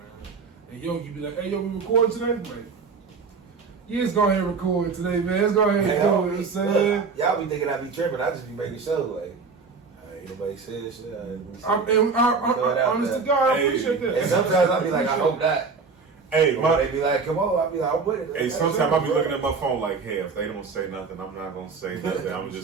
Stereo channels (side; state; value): left; quieter; 4.9 dB